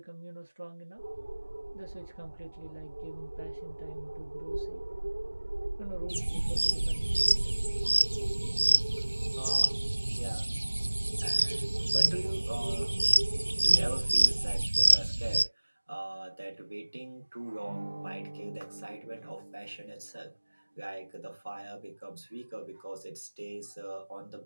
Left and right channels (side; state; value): both; inverted; correlation -1.00